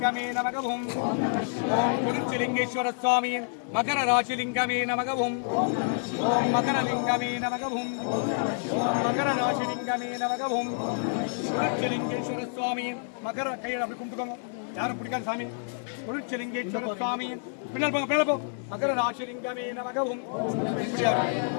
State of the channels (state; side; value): silent; right; digital silence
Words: நமக ஓம். ஓம் திருச்சிலிங்கேஸ்வர சுவாமி மகர ராசிலிங்கமே நமக ஓம். ஓம் மகரலிங்கமே நமக ஓம். ஓம் மகர ராசிலிங்கமே நமக ஓம். திருச்சிலிங்கேஸ்வர சுவாமி மகர கையில் அப்படி கும்பிட்டுக்கோங்க. யாரும் பிடிக்காது சாமி. திருச்சிலிங்கேஸ்வர சுவாமி பின்னால் போங்க, மேலே போ. மகர ராசிலிங்கமே நமக ஓம்.